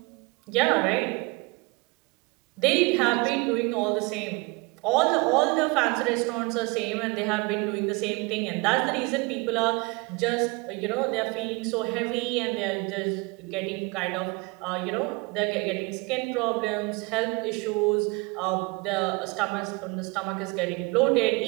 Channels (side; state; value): left; quieter; 27.0 dB